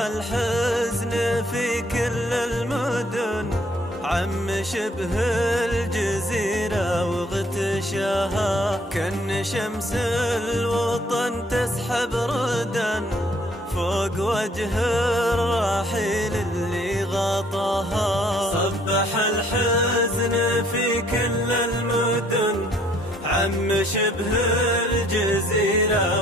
في كل المدن، عم شبه الجزيرة واغتشاها، كأن شمس الوطن تسحب ردا فوق وجه الرحيل اللي غطاها. صبح الحزن في كل المدن، عم شبه الجزيرة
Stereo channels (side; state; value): both; normal; correlation 0.63